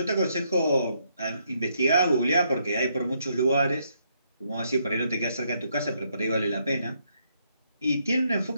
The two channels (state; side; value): inverted; both; correlation -0.74